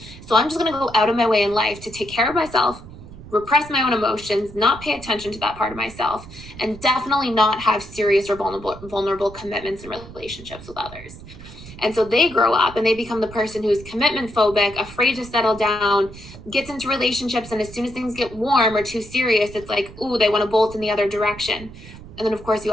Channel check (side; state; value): right; noise; rumble, 16 dB below the sound